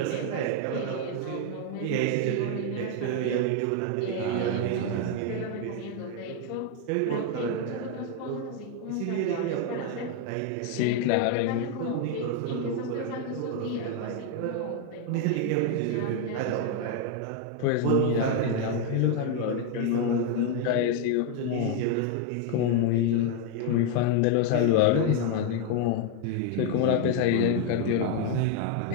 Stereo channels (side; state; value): both; different; correlation 0.01